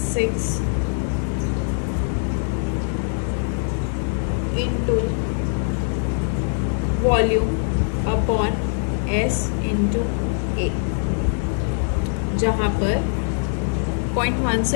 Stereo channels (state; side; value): silent; right; 64 dB below the other